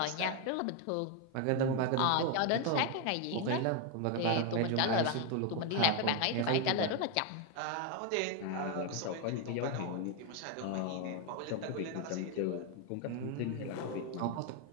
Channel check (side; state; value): both; different; correlation 0.01